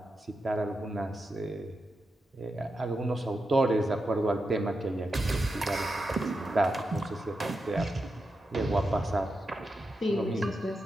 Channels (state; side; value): normal; both; correlation 0.88